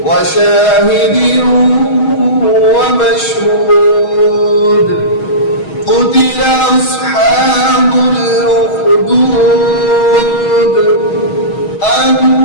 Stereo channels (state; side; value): late; right; 6.3 ms